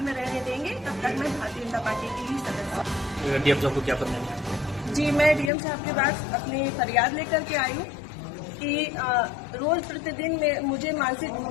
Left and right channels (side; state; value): right; drops out; at 5.5 s